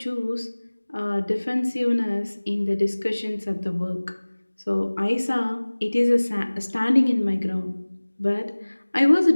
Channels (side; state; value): both; inverted; correlation -1.00